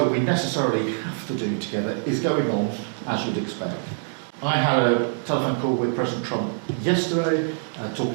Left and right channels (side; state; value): left; silent; digital silence